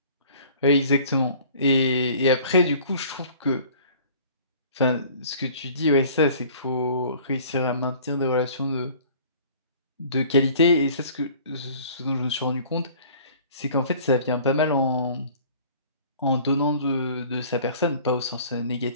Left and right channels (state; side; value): inverted; both; correlation -0.49